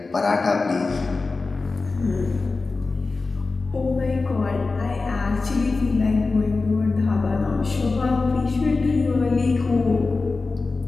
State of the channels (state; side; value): quieter; right; 3.8 dB